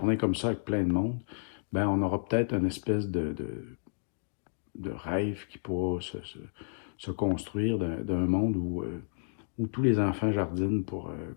comme ça avec plein de monde, ben, on aura peut-être une espèce de rêve qui pourra se construire d'un monde où tous les enfants jardinent pour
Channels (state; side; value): silent; right; digital silence